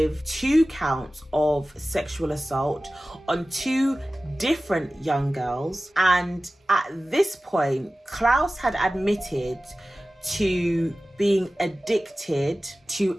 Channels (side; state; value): both; normal; correlation 0.96